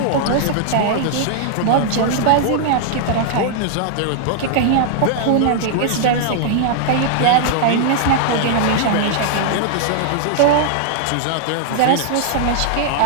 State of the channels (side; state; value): both; different; correlation -0.01